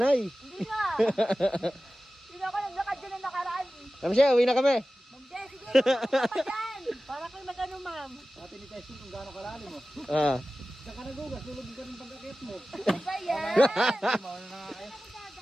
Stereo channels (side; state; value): both; normal; correlation 0.95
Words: Hindi nga. Hindi ako naglakad dyan na nakaraan. Kami siya, uwi na kami. Ma'am Je, sige. Tulungan pa dyan. Para kayo mag-ano, ma'am. Dati ni testing kung gaano kalalim mo. Ah. Saka nagugas, tulog ka ng pagkakit mo. Ano ba yan? Mauna na nga kayo.